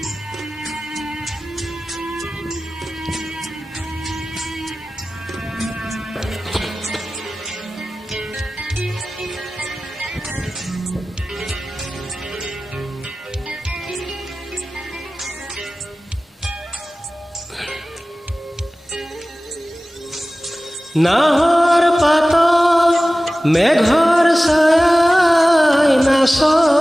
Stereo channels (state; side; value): normal; both; correlation 0.97